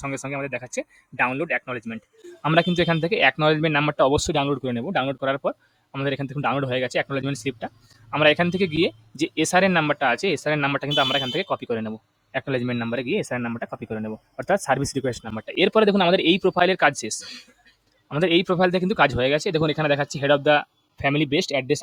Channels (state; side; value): identical; both; correlation 1.00